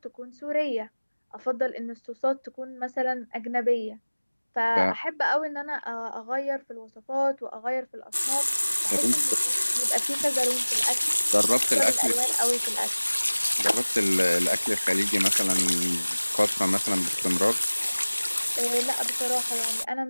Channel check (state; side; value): inverted; both; correlation -1.00